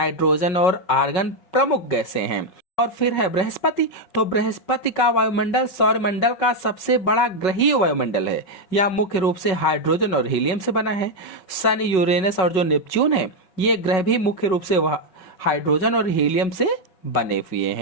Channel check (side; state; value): right; late; 5.4 ms